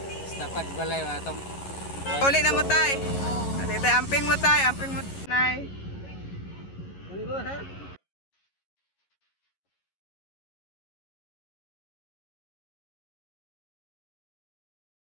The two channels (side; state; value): right; late; 11 ms